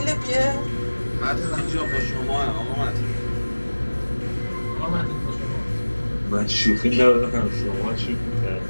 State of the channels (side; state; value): both; inverted; correlation -1.00